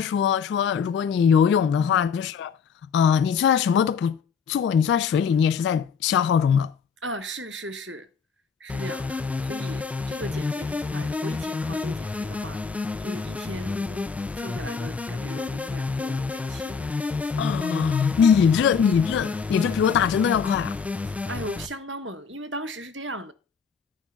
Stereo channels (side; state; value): right; quieter; 6.2 dB